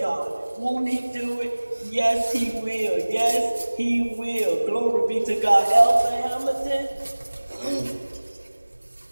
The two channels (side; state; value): both; inverted; correlation -1.00